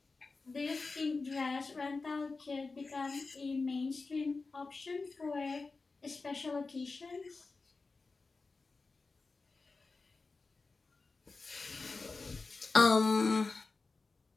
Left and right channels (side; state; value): right; quieter; 4.0 dB